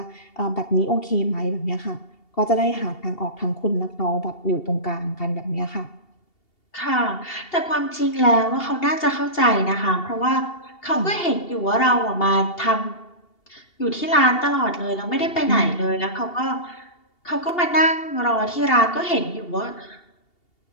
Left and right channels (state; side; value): late; right; 2.8 ms